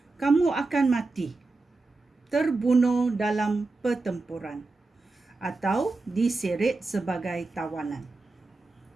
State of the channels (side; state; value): left; quieter; 3.5 dB